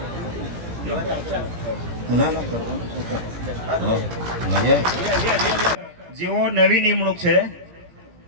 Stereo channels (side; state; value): left; late; 17 ms